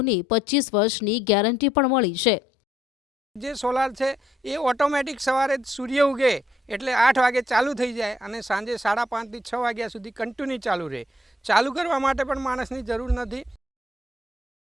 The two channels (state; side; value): normal; both; correlation 0.70